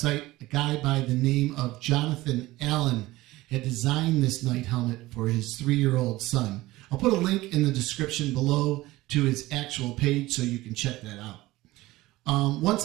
A guy by the name of Jonathan Allen had designed this night helmet for his 3-year-old son. I'll put a link in the description below to his actual page so you can check that out.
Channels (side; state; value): left; quieter; 18.3 dB